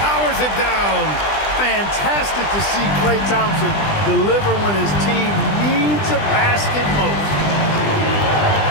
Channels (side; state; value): right; late; 20 ms